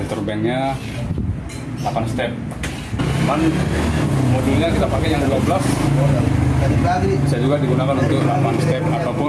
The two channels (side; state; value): both; identical; correlation 1.00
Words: banknya 8 step. Cuman modulnya kita pakai yang 12. Bisa juga digunakan untuk 8 step